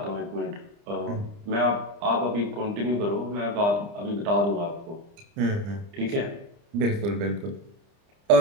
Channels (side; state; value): left; late; 30 ms